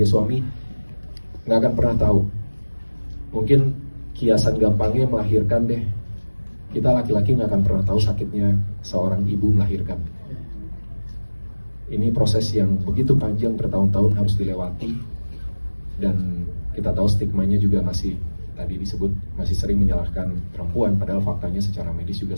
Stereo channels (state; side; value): inverted; both; correlation -1.00